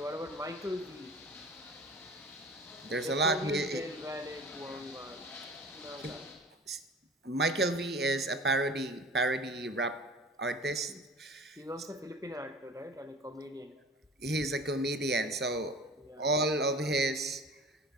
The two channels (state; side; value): normal; both; correlation 0.40